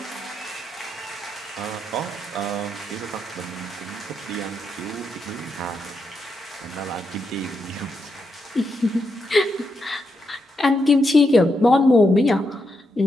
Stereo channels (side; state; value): both; normal; correlation 0.83